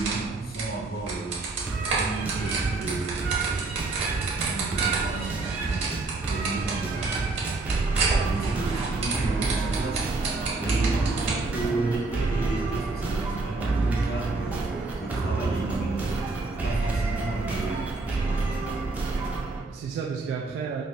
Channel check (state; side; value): quieter; left; 3.4 dB